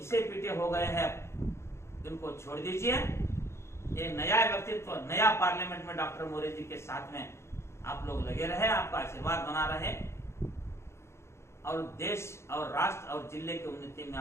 पीटे हो गए हैं उनको छोड़ दीजिए। ये नया व्यक्तित्व, नया पार्लियामेंट में डॉक्टर मोरे जी के साथ में आप लोग लगे रहे, आपका आशीर्वाद बना रहे, और देश और राष्ट्र और जिले की उन्नति में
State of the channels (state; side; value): late; right; 0.13 ms